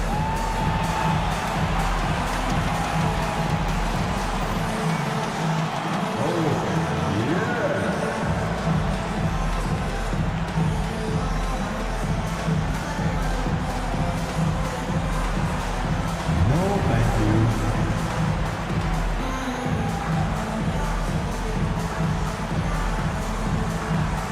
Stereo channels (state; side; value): identical; both; correlation 1.00